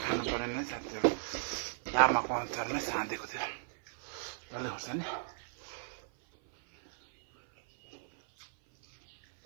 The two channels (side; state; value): left; silent; 54 dB below the other